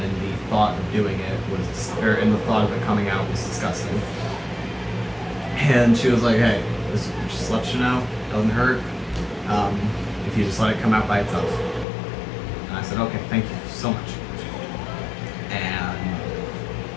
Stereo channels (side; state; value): right; drops out; at 11.9 s